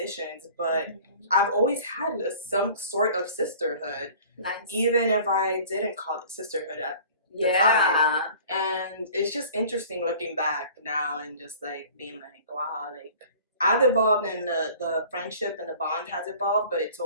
but I've always had some sort of sisterhood. Nice. Even if I didn't call it sisterhood at the time. And it's just interesting looking back now and just like being like, wow, like I've evolved and the friendship and the bond has evolved, but it's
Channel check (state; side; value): inverted; both; correlation -0.47